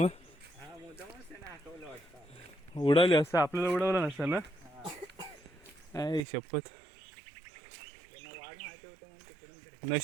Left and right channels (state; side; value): drops out; left; at 6.2 s